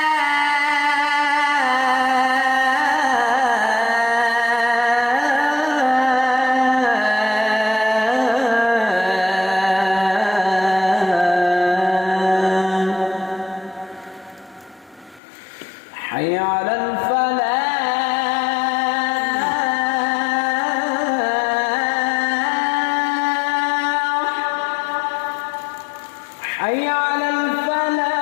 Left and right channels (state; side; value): drops out; right; at 15.2 s